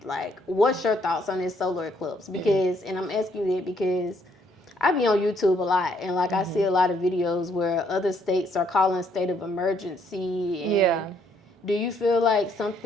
Like, what's your thoughts on this solar eclipse? Because, and I'm asking you that because I be on YouTube a lot, and like I see a lot of videos where other states are calling state of emergency. And do you feel like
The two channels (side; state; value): both; normal; correlation 0.69